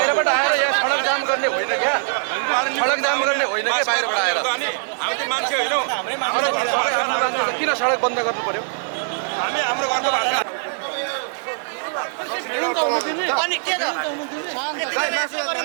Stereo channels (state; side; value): silent; left; 55 dB below the other